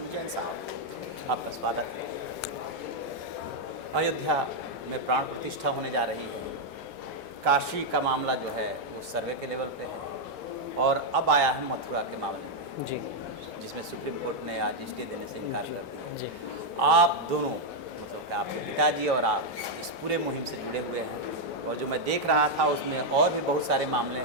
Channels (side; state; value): both; normal; correlation 0.00